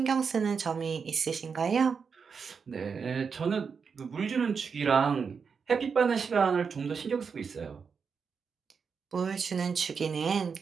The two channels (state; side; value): quieter; left; 5.8 dB